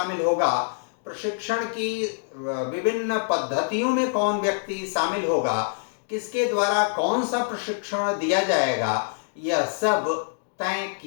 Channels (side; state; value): right; silent; digital silence